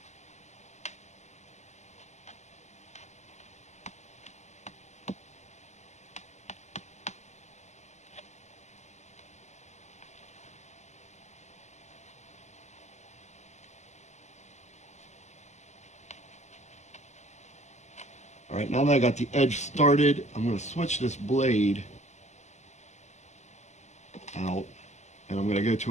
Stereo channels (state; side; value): late; right; 0.33 ms